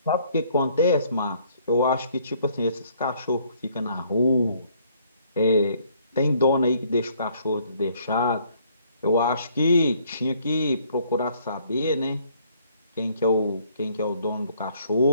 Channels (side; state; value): both; inverted; correlation -0.64